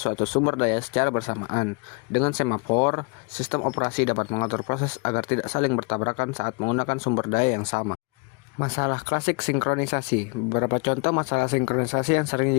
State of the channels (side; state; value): right; quieter; 32.7 dB